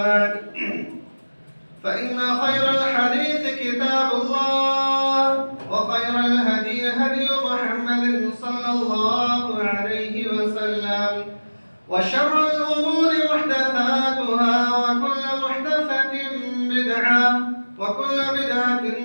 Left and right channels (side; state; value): both; inverted; correlation -1.00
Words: فإن خير الحديث كتاب الله وخير الهدي هدي محمد صلى الله عليه وسلم وشر الأمور محدثاتها وكل محدثة بدعة وكل بدعة